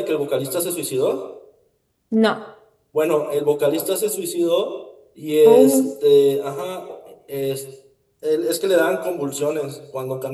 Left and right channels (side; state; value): both; identical; correlation 1.00